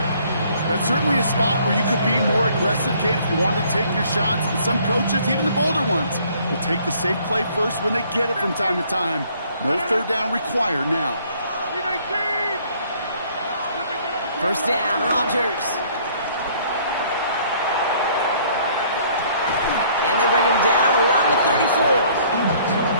That's certainly a spot where you could be more aggressive, Kate, if you wanted to take your shots. And some coaches, even the bolder ones, will take the safe play first when they get it from time to time. No third down required now. First down, Rodgers. And they bring him down around the 34.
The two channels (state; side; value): inverted; both; correlation -0.60